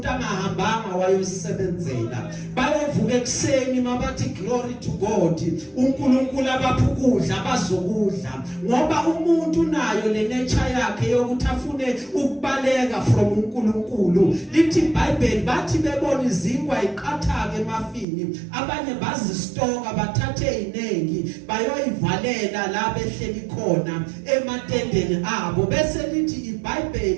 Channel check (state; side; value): drops out; left; at 18.1 s